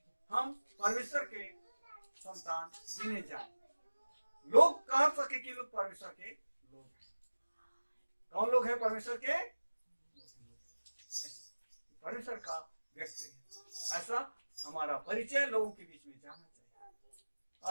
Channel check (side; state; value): both; inverted; correlation -1.00